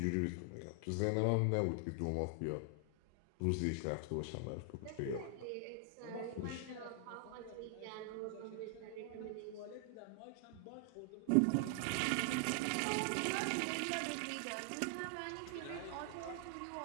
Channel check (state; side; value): different; both; correlation 0.00